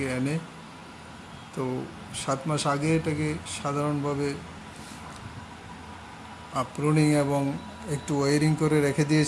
এনে। তো 7 মাস আগে এটাকে সাধারণভাবে প্রুনিং এবং একটু ওয়ারিং করে রেখে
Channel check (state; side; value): identical; both; correlation 1.00